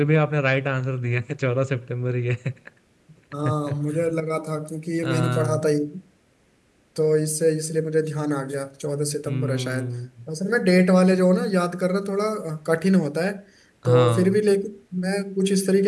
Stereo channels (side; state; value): both; identical; correlation 1.00